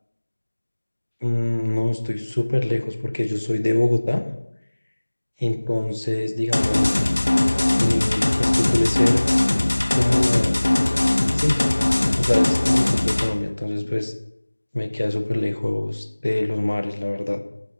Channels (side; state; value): both; inverted; correlation -1.00